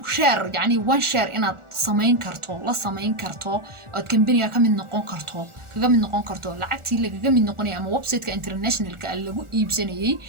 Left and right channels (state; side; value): late; left; 1.4 ms